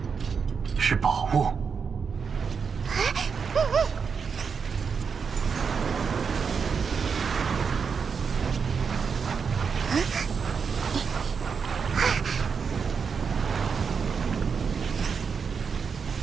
是宝物。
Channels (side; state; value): left; quieter; 6.0 dB